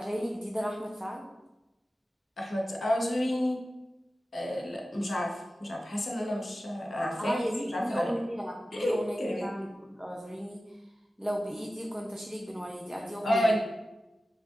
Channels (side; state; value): both; normal; correlation 0.94